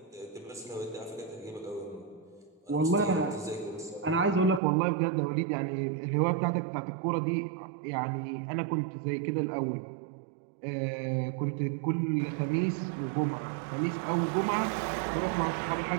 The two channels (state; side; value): drops out; left; at 4.6 s